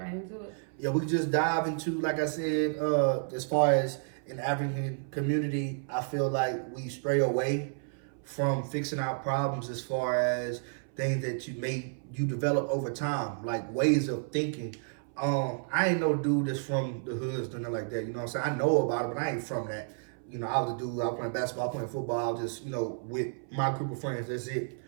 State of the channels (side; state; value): left; silent; 57 dB below the other